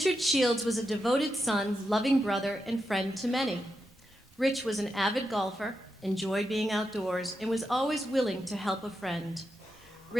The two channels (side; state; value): both; normal; correlation 0.86